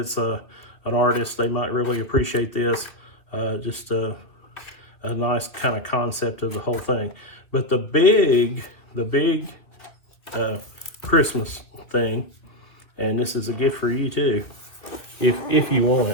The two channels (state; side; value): late; right; 2.4 ms